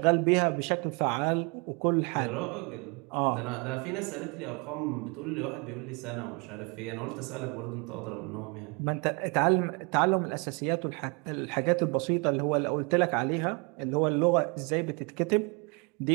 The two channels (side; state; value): left; quieter; 32.0 dB